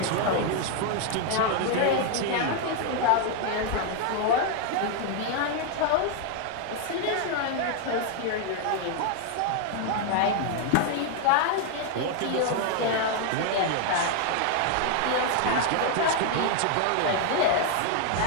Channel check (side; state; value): both; different; correlation 0.00